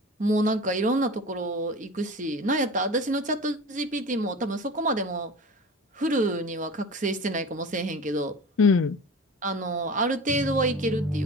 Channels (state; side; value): normal; both; correlation 0.35